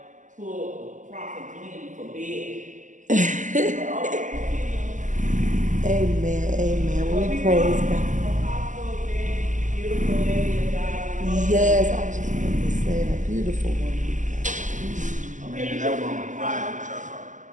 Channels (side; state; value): left; late; 0.37 ms